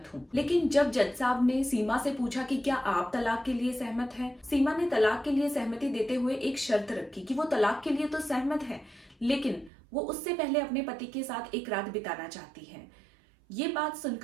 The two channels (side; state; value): left; drops out; at 9.7 s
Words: हूँ। लेकिन जब जज साहब ने सीमा से पूछा कि क्या आप तलाक के लिए सहमत हैं, सीमा ने तलाक के लिए सहमति देते हुए एक शर्त रखी कि वो तलाक के लिए तो सहमत है, लेकिन वो उससे पहले अपने पति के साथ एक रात बिताना चाहती है। ये बात